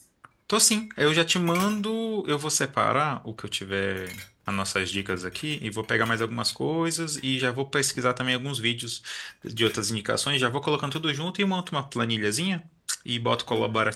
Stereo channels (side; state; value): both; identical; correlation 1.00